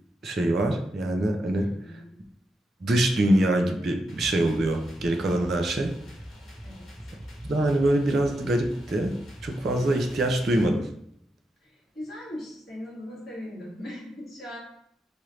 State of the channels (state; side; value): normal; both; correlation 0.84